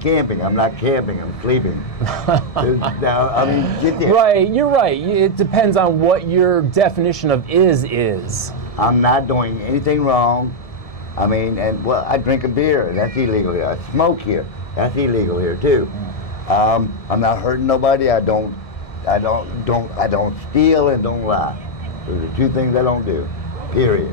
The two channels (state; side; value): late; right; 1.7 ms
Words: camping. I'm not camping, I'm sleeping. Now, I mean, get there. Right, you're right. It depends on what your definition of is. I'm not doing anything wrong. I mean, and well, I drink a beer. That's illegal here. I smoke here. That's illegal here too. I'm not hurting nobody. I don't steal and don't lie. Those are two things I don't do. Period.